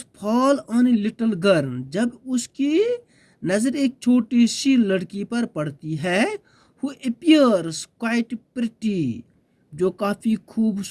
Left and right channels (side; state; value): both; identical; correlation 1.00